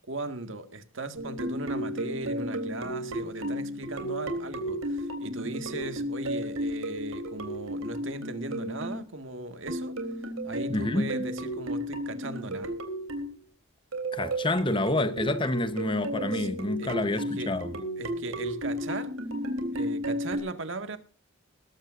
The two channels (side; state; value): both; normal; correlation 0.32